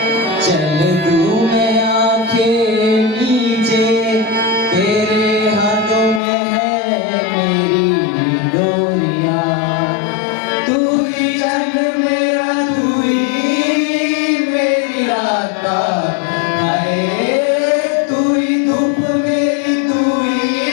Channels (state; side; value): drops out; right; at 6.2 s